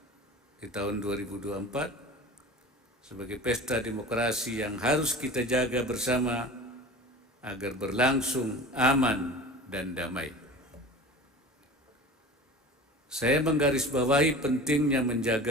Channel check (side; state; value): both; normal; correlation 0.37